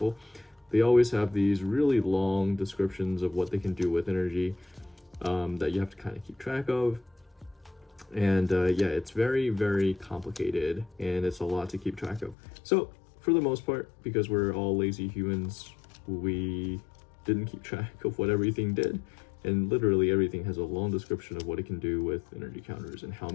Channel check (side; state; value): right; drops out; at 12.4 s